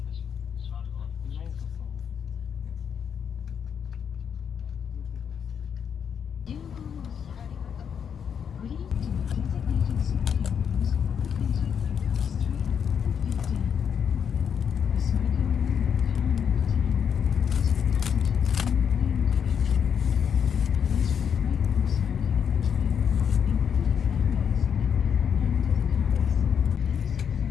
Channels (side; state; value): right; quieter; 7.5 dB